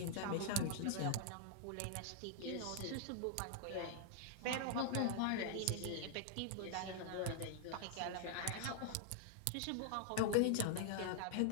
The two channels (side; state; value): both; different; correlation 0.00